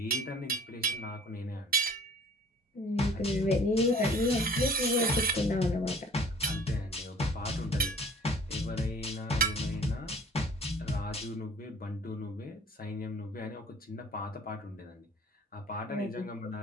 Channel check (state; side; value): normal; both; correlation 0.50